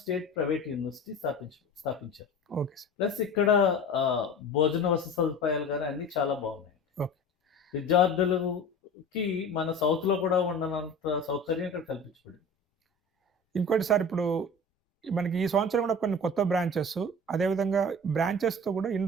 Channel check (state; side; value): normal; both; correlation 0.37